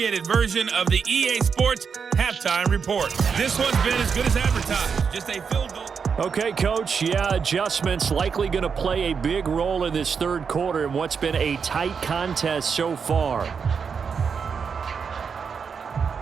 version of the EA Sports Halftime Report. This one's been as good as advertised, just a field goal. Okay, Coach, adjustments likely going to play a big role in this third quarter in what's been a tight contest so far.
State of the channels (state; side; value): quieter; left; 6.1 dB